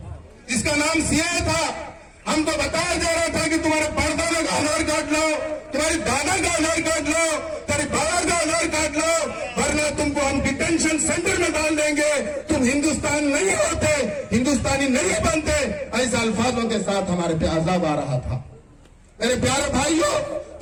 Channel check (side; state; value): both; identical; correlation 1.00